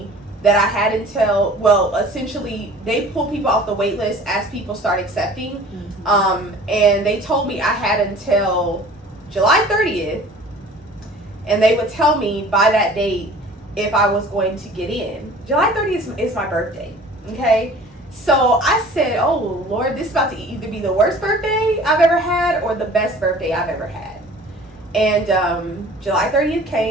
that I had until, well, essentially they pull people off the wait list as people start accepting. And they told me I had until July 30th, and they would tell me by that date if I was going to get in. July 30th is my birthday, okay? So I said, oh Lord, this is about to either be the worst birthday I've ever had or the best birthday I've ever had. And July 30th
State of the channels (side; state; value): both; normal; correlation 0.46